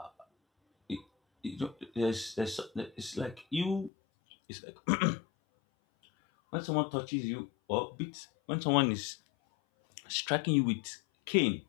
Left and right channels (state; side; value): drops out; right; at 3.9 s